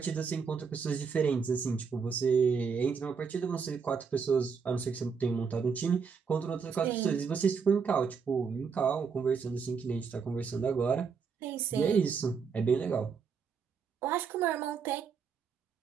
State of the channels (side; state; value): left; quieter; 5.9 dB